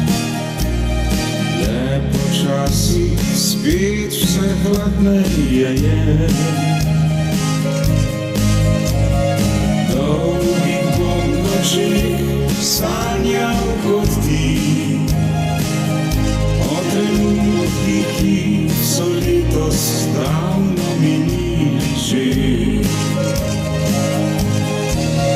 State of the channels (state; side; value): identical; both; correlation 1.00